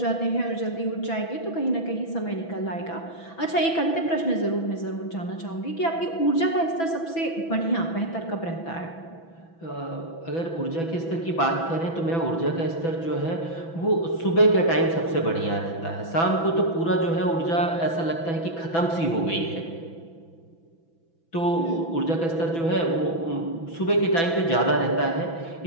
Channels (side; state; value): right; late; 6.0 ms